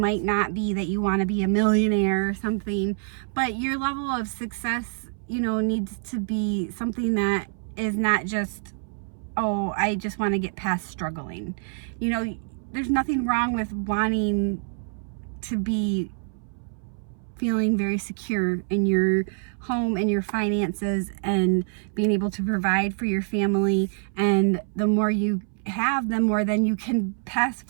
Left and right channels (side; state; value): left; silent; 61 dB below the other